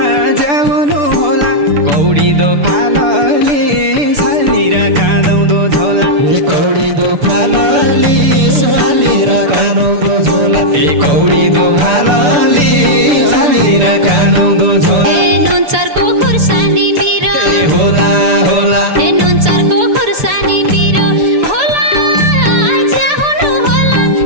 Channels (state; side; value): late; left; 6.9 ms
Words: जाउनु होला कौडी दो फालले सालभिर कानौँदो झोला कौडी दो फालले सालभिर कानौँदो झोला कौडी दो फालले सालभिर कानौँदो झोला नुनचरको खुर्सानी पिरो होला होला नुनचरको खुर्सानी पिरो होला ज्याउनु होला